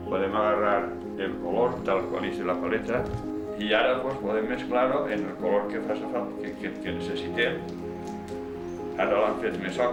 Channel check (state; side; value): identical; both; correlation 1.00